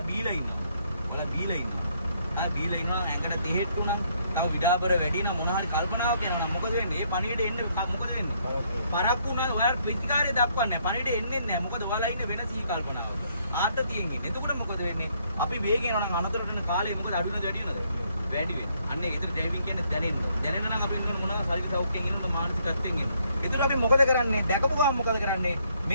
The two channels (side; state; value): both; inverted; correlation -0.70